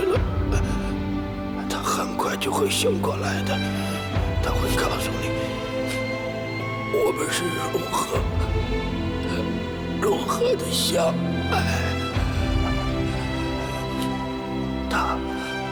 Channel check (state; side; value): identical; both; correlation 1.00